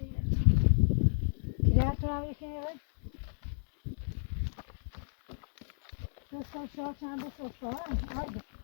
Kira kahve işine ver. Sen şu an sen de sosla var. Haydi.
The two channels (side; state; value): right; silent; digital silence